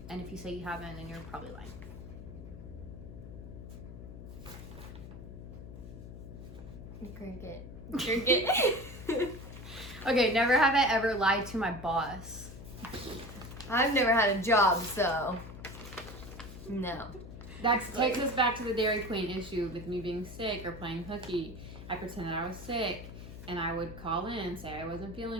And if you say you haven't, then you're probably lying. Cricket. Cricket. Okay, never have I ever lied to my boss. I've never had a job, so no. That takes us back to the Dairy Queen issue with me being sick or playing hooky. I pretended I was sick, and I would call in and say I wasn't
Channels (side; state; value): left; noise; hum, 12 dB below the sound